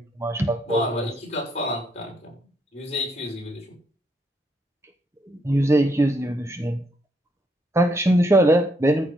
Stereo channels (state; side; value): normal; both; correlation 0.74